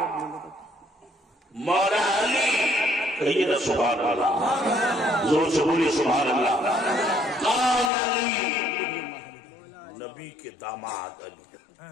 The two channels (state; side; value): drops out; right; at 7.9 s